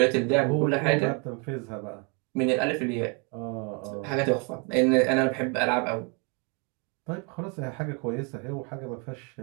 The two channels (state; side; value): quieter; left; 34.1 dB